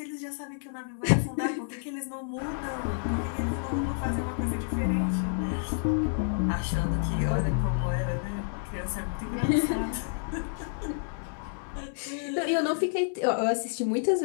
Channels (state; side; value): silent; right; digital silence